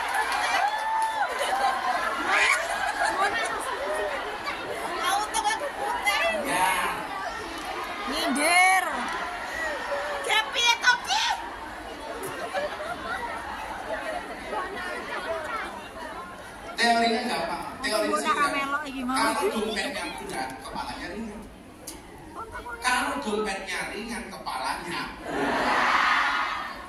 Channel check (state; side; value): identical; both; correlation 1.00